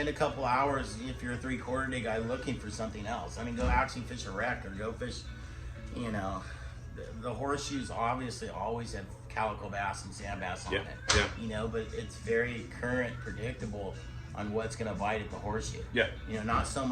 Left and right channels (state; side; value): identical; both; correlation 1.00